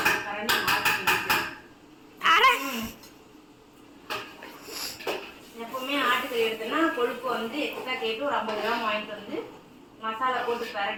எப்பவுமே ஆட்டுக்கறி எடுத்தனா கொழுப்பு வந்து எக்ஸ்ட்ரா கேட்டு ஒரு 50 கிராம் வாங்கிட்டு வந்து மசாலா போட்டு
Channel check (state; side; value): identical; both; correlation 1.00